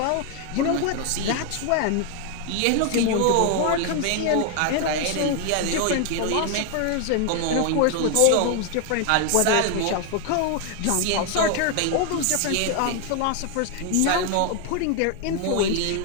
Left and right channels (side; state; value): both; different; correlation 0.01